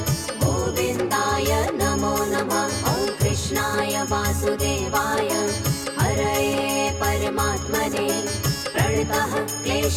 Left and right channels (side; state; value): both; identical; correlation 1.00